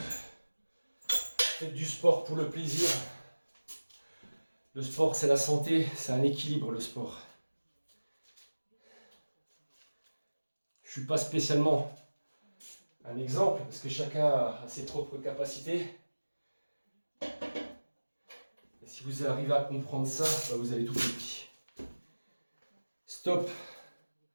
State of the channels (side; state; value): both; inverted; correlation -1.00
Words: du sport pour le plaisir. Le sport, c'est la santé, c'est un équilibre, le sport. Je ne suis pas spécialement un exemple, parce que chacun a ses propres capacités. Et si vous arrivez à comprendre ça, bah vous avez tout compris. Stop.